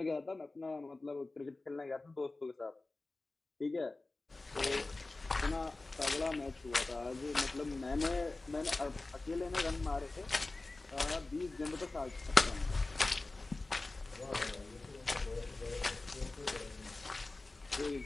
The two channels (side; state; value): right; quieter; 3.2 dB